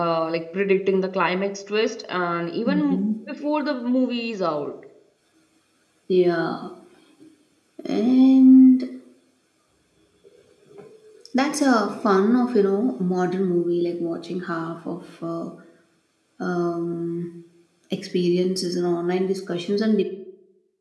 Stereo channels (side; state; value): both; identical; correlation 1.00